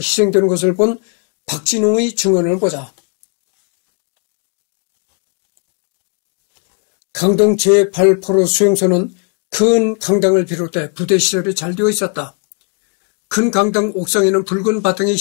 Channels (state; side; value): quieter; right; 39.7 dB